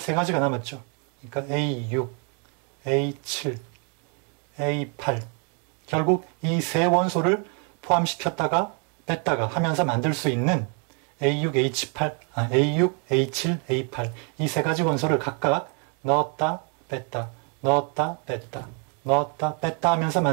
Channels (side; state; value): left; quieter; 38.3 dB